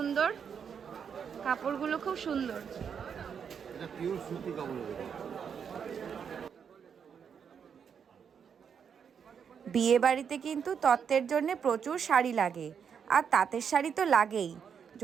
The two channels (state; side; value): quieter; left; 7.2 dB